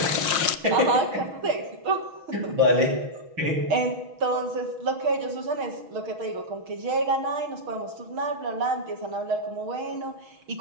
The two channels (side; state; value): left; late; 6.2 ms